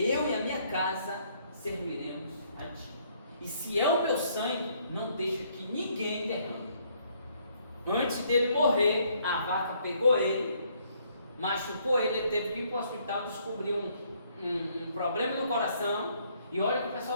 e a minha casa serviremos a ti. E se é o meu sangue, não deixa que ninguém derrame. Antes dele morrer, a vaca pegou ele, machucou ele teve que ir para o hospital, descobriu um problema no coração, e olha que o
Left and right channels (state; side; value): inverted; both; correlation -0.67